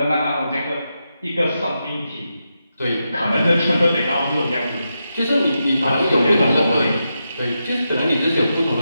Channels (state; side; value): inverted; both; correlation -0.87